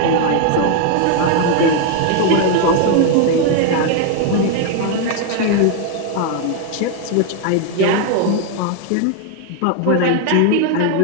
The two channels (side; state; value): both; different; correlation 0.00